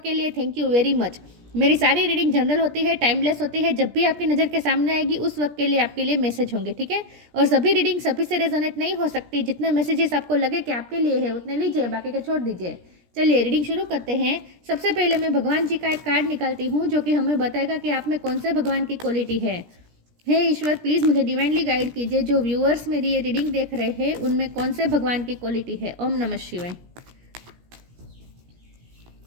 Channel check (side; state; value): left; late; 17 ms